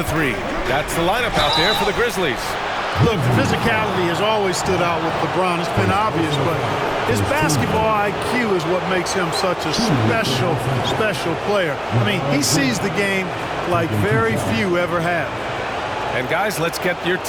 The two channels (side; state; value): both; identical; correlation 1.00